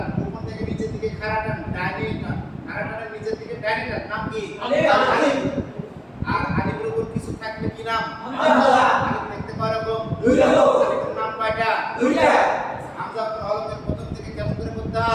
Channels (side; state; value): both; identical; correlation 1.00